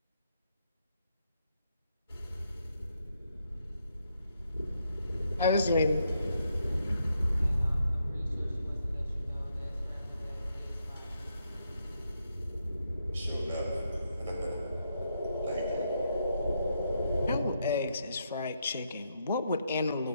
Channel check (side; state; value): both; inverted; correlation -0.79